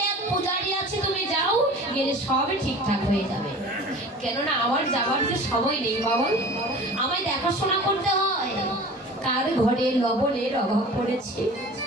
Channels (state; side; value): normal; both; correlation 0.40